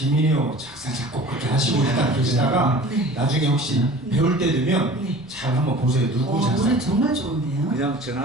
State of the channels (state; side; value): normal; both; correlation 0.42